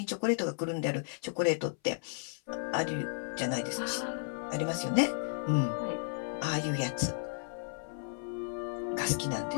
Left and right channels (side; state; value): right; silent; 55 dB below the other